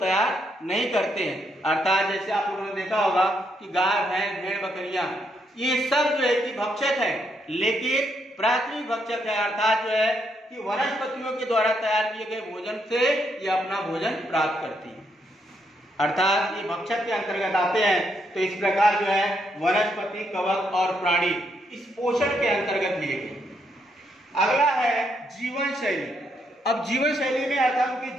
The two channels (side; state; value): both; normal; correlation 0.77